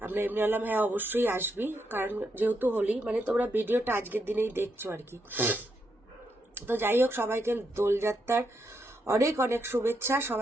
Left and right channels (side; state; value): both; normal; correlation 0.80